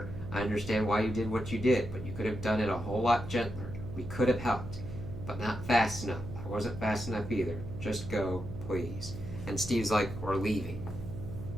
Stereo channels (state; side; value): noise; right; hum, 10 dB below the sound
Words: I understand why you did what you did, but you could have done it a whole lot gentler. We could have helped, but not fast enough. I wasn't fast enough either. Just go, please. And Steve's like, we're leaving.